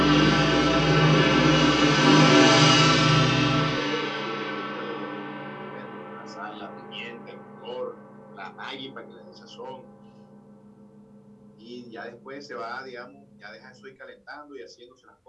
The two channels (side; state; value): both; identical; correlation 1.00